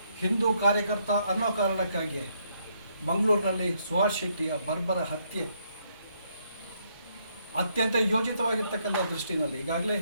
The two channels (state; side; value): inverted; both; correlation -0.73